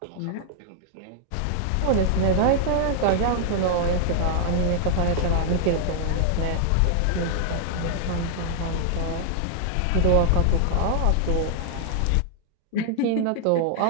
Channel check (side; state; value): both; different; correlation 0.00